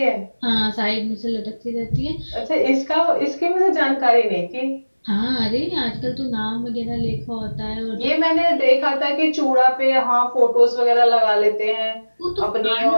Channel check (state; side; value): inverted; both; correlation -1.00